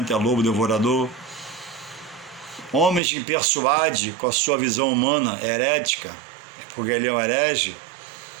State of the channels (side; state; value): left; drops out; at 3.0 s